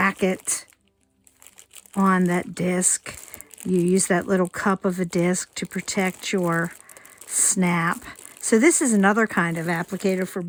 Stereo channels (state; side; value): identical; both; correlation 1.00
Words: it on that disc, You use that little cup of a disc to protect your snap. So this is another kind of applicator for